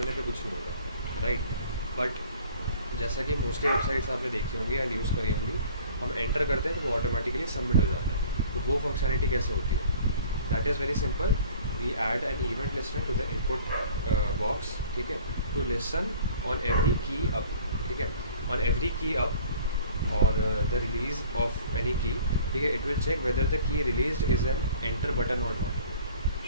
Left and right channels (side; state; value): both; inverted; correlation -0.50